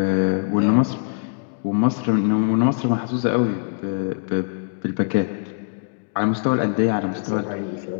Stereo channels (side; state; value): right; silent; digital silence